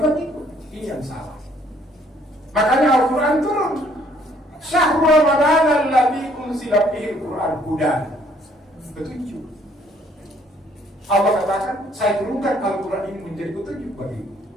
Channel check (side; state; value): both; normal; correlation 0.63